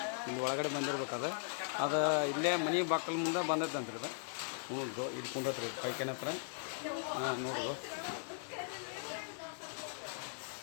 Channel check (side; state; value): right; silent; digital silence